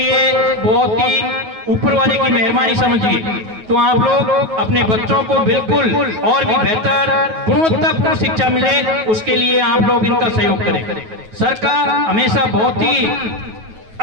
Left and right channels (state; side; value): late; left; 9.3 ms